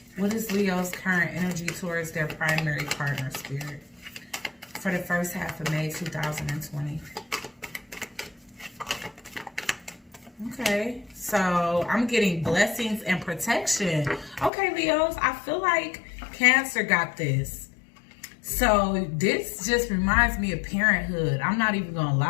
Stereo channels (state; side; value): drops out; right; at 14.5 s